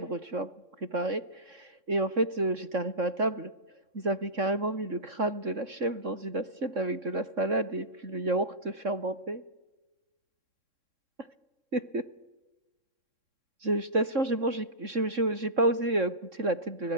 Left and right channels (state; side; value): late; left; 3.6 ms